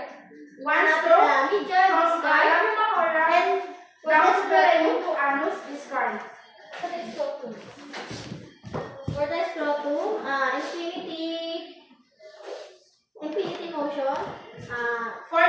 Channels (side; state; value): both; identical; correlation 1.00